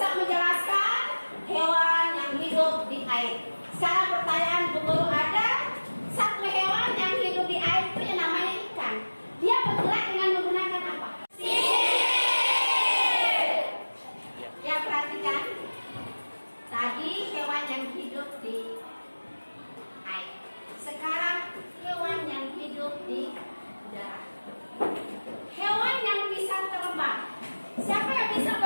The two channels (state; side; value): inverted; both; correlation -1.00